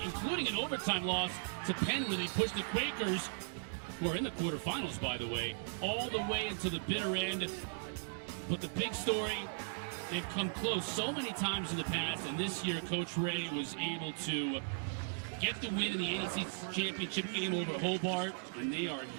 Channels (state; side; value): silent; left; digital silence